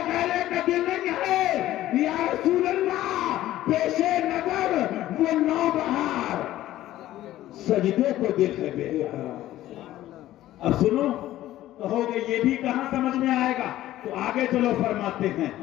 غیرے کا دل نہیں ہے، یا رسول اللہ پیش نظر وہ نو بہار، سجدے کو دل ہے بے قرار۔ اب سنو، کہو گے یہ بھی کہاں سمجھ میں آئے گا، تو آگے چلو، فرماتے ہیں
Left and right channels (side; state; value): right; quieter; 14.3 dB